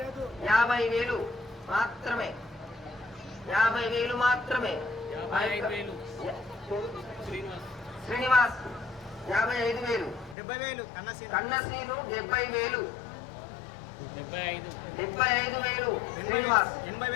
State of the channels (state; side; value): drops out; right; at 10.4 s